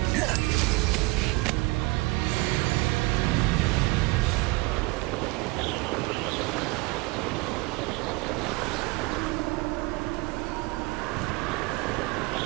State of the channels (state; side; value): quieter; left; 24.4 dB